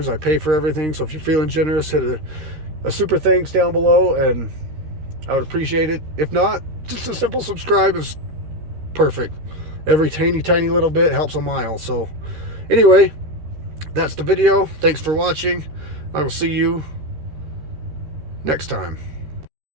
I pay for everything. So if you're feeling generous, hit a super thanks down below, and I would appreciate it. If not, just a simple subscribe is perfect. Every tiny little bit helps a mile. So anyway, that's the video. Thanks for watching. I will see you next time.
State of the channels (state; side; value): late; left; 13 ms